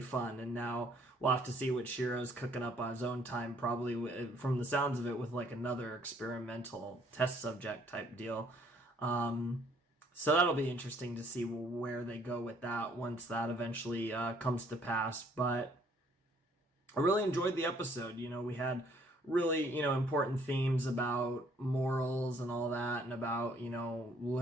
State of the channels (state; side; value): normal; both; correlation 0.63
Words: fun. And now we'll have to see what Shiro's cooking up on his own time, probably from the sounds of it with like another experimental test subject type deal. So that'll be interesting to see where they go with that once that eventually comes to pass. But I really enjoyed the episode. You know, we had really, you know, important themes about morals and all that, and about, you know,